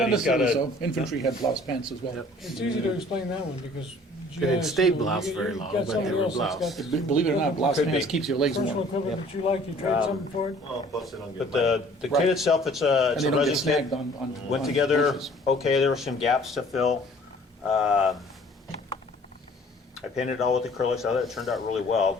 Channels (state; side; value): normal; both; correlation 0.54